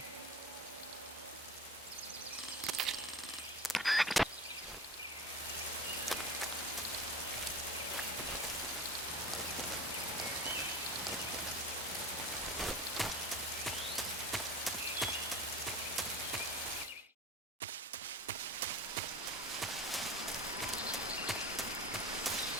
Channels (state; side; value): normal; both; correlation 0.34